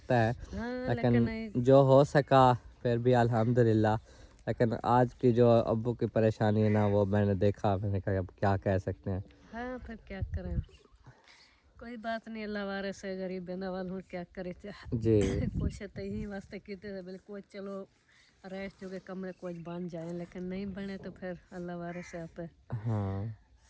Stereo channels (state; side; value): identical; both; correlation 1.00